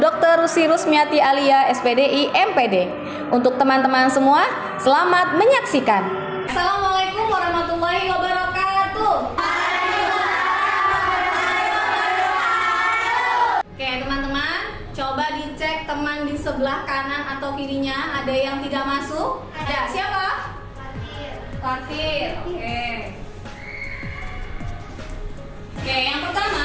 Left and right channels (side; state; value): both; identical; correlation 1.00